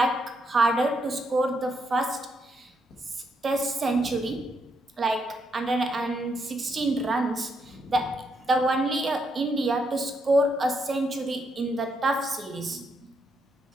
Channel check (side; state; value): both; normal; correlation 0.78